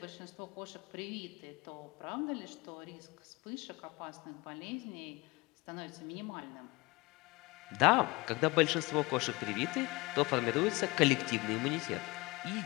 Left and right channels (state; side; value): quieter; right; 23.9 dB